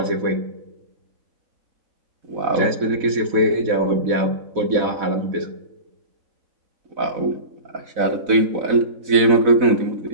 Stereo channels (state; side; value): late; left; 4.0 ms